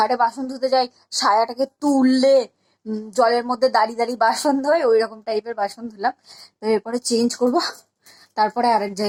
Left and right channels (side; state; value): both; identical; correlation 1.00